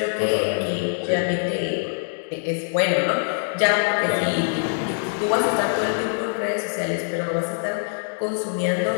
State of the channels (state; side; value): silent; right; digital silence